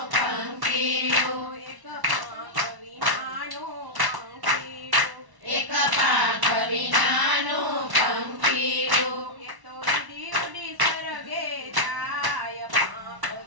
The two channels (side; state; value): left; late; 1.1 ms